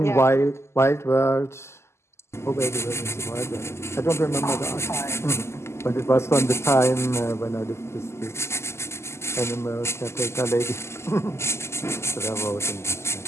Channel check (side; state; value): right; late; 0.13 ms